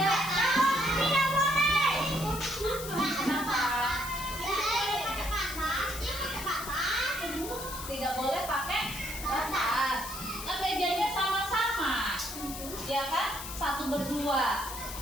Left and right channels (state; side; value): noise; left; hiss, 9 dB below the sound